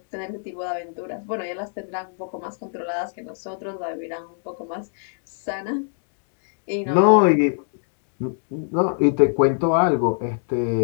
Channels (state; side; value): silent; right; digital silence